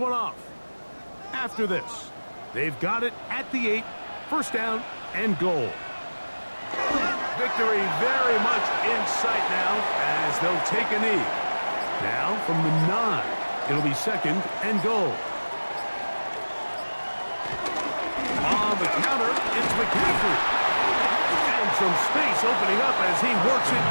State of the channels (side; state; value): both; inverted; correlation -1.00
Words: off. After this, they've got it at the 8, first down and goal. Victory very much in sight now as they'll take a knee. Now from the 9, it'll be second and goal. On the counter, it's McCaffrey. And some space opening up as he works it